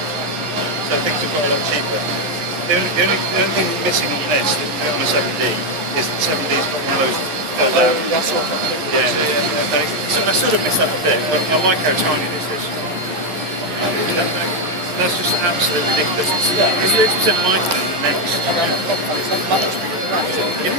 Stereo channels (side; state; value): left; late; 12 ms